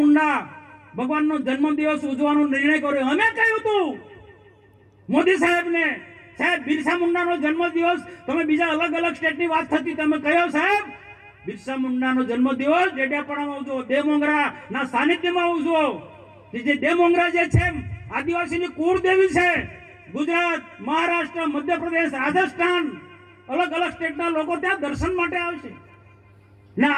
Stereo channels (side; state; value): both; identical; correlation 1.00